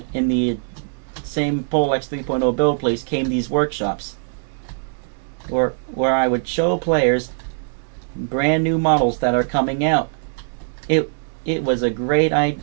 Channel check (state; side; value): silent; left; 65 dB below the other